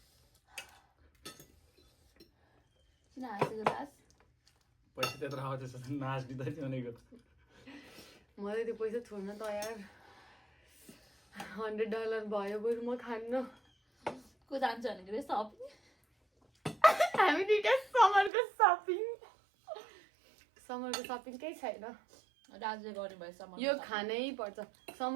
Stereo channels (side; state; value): left; drops out; at 18.3 s